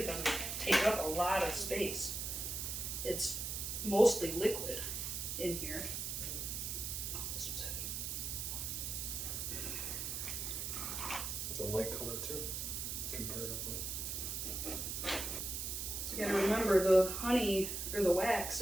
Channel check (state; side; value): noise; right; hiss, 3 dB below the sound